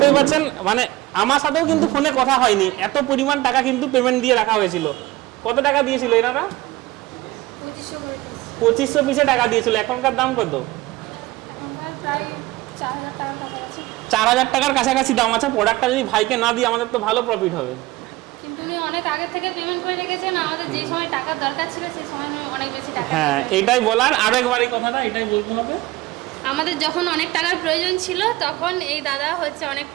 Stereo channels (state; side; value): quieter; left; 19.0 dB